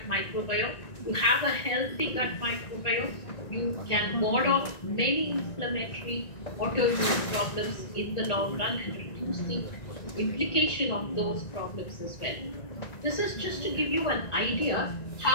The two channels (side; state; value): right; late; 1.9 ms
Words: microbiome. You have a healthy gut microbiome, you can ward off many inflammatory autoimmune problems in the long run and reduce the implication of those problems as well. This is just to give you an idea